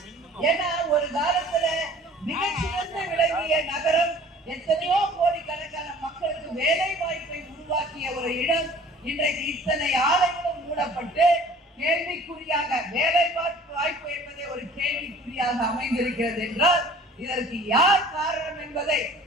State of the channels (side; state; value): both; normal; correlation 0.49